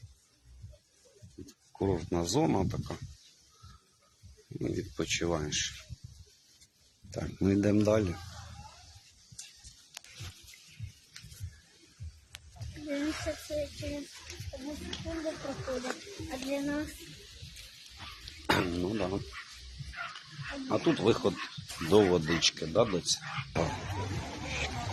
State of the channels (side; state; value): both; identical; correlation 1.00